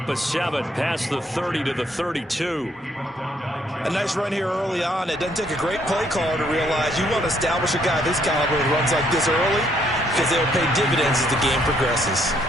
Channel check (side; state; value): both; normal; correlation 0.69